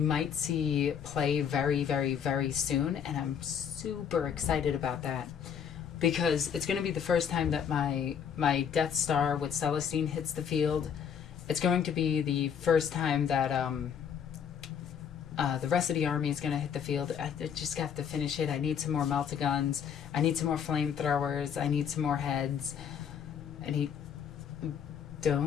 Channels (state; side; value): quieter; right; 7.9 dB